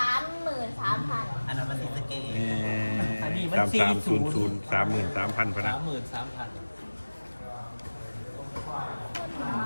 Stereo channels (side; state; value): both; inverted; correlation -1.00